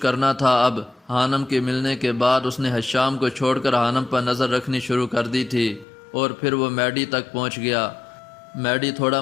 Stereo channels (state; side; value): drops out; right; at 5.9 s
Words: کرنا تھا اب۔ حانم کے ملنے کے بعد اس نے حشام کو چھوڑ کر حانم پر نظر رکھنی شروع کر دی تھی، اور پھر وہ میڈی تک پہنچ گیا۔ میڈی تھوڑا